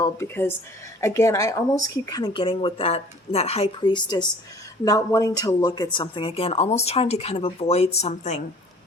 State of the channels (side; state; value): both; normal; correlation 0.51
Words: because again, I almost keep kind of getting with that High Priestess not wanting to look at something, again, almost trying to kind of avoid something.